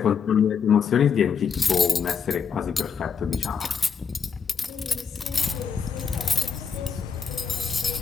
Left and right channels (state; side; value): quieter; right; 6.3 dB